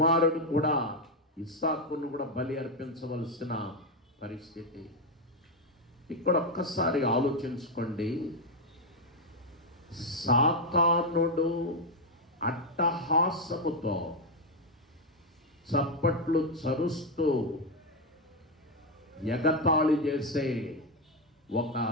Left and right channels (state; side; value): normal; both; correlation 0.05